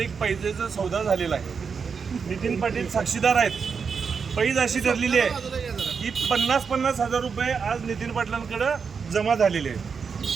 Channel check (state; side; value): quieter; left; 5.8 dB